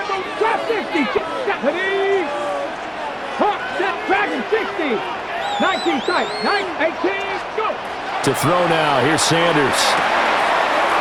60. 19 tight. 18. Go. To throw now. Here's Sanders.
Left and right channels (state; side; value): identical; both; correlation 1.00